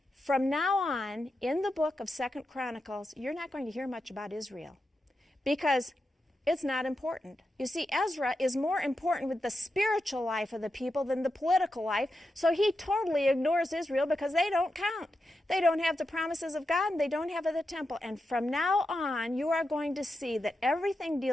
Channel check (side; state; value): both; normal; correlation 0.88